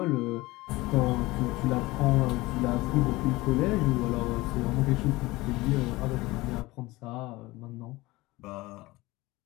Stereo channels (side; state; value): right; quieter; 20.4 dB